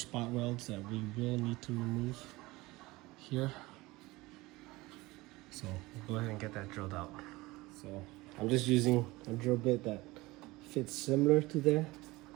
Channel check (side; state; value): left; quieter; 20.8 dB